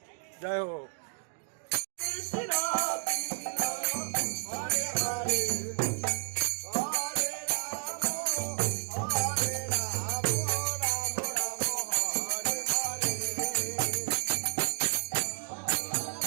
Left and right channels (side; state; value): left; silent; digital silence